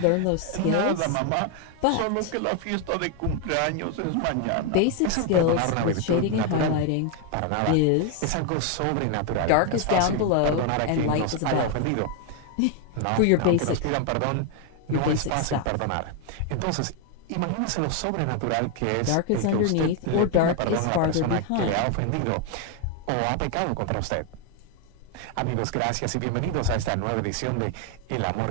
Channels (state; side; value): different; both; correlation 0.01